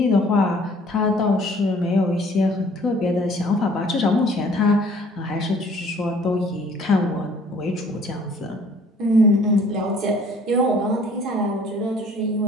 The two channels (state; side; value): normal; both; correlation 0.55